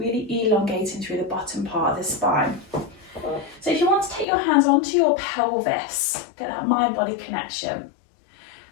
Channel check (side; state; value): right; drops out; at 4.2 s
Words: elongating through the bottom part of the spine. So if you want to take your hands onto your pelvis, get that mind-body connection.